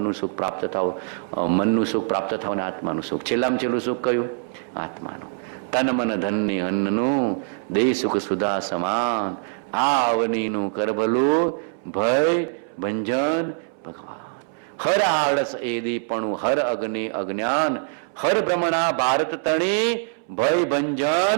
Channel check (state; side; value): silent; left; 63 dB below the other